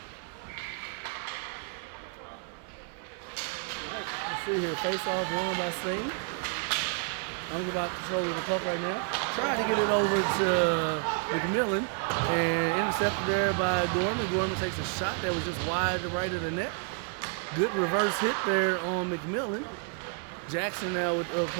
Let's see here. Face-off won by Sting. I'm about control of the puck right now. Trying to get it over to McMillan and intercepted there by Gorman. Gorman takes a shot that was just wide to right of the net. Good reverse hit there on McMillan. Jackson now with the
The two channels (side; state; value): left; quieter; 39.1 dB